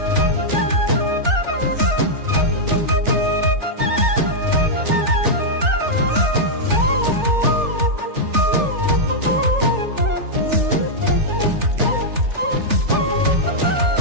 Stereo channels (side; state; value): left; late; 3.4 ms